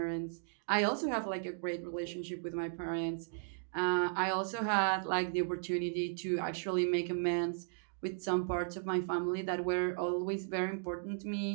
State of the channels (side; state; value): left; silent; digital silence